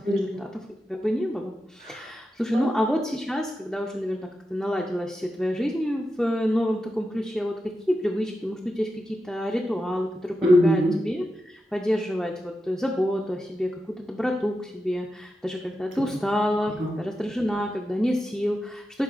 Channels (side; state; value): both; normal; correlation 0.89